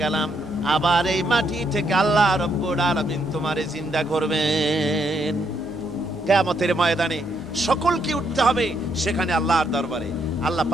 গেলাম, আবার এই মাটি থেকে আল্লাহ রাব্বুল আলামিন তোমারে জিন্দা করবেন। কিয়ামতের ময়দানে সকলকে উঠতে হবে সেখানে আল্লাহর দরবারে। আল্লাহ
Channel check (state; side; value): normal; both; correlation 0.75